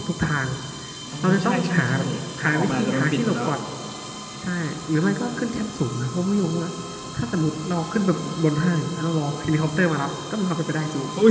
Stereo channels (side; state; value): both; identical; correlation 1.00